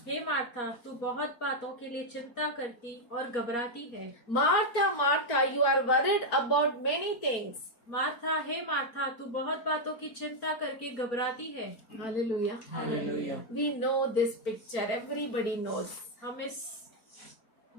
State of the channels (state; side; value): late; right; 4.5 ms